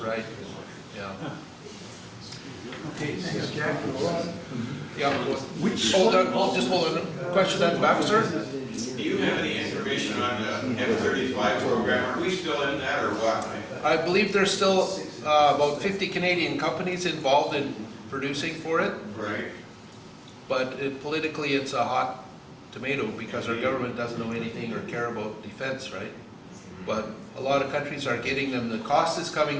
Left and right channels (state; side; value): identical; both; correlation 1.00